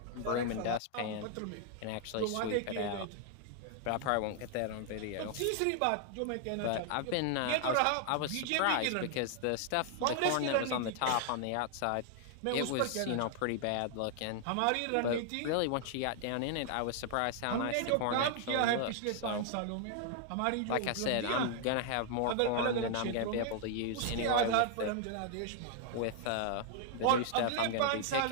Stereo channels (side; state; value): both; different; correlation 0.00